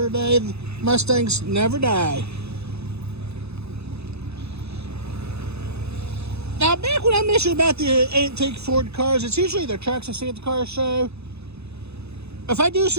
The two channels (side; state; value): left; late; 0.79 ms